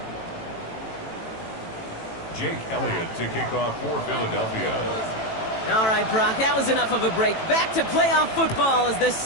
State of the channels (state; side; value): late; right; 18 ms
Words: Jake Elliott to kick off for Philadelphia. All right, Brock, that was enough of a break. Back to playoff football as the